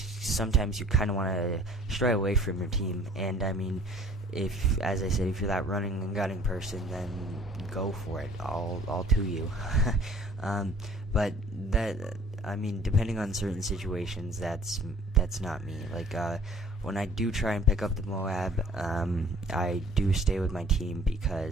you kind of want to stray away from your team. And I mean, if, as I said, if you're that running and gunning person, then go for it. All to you. But that, I mean, depending on certain situations, that's not me. Like when I do try and pick up the MOAB, I do stay with my team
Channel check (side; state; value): both; normal; correlation 0.52